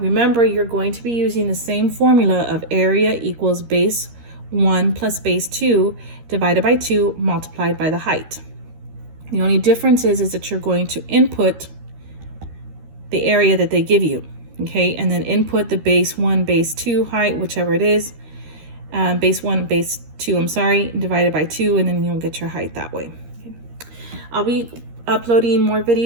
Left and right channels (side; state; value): left; late; 13 ms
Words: you're going to be using the same formula of area equals base 1 plus base 2 divided by 2 multiplied by the height. The only difference is that you're going to input the area that they give you, okay? And then input the base 1, base 2 height, whichever it is, base 1, base 2, I'm sorry, divided by 2, and then you'll get your height that way. Okay. I'll be uploading more